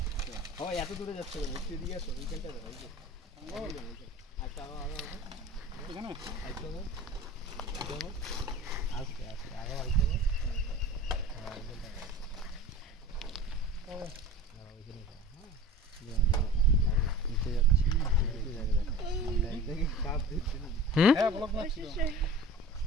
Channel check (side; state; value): both; normal; correlation 0.39